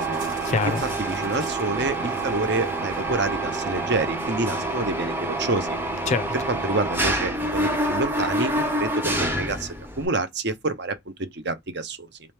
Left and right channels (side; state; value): both; normal; correlation 0.23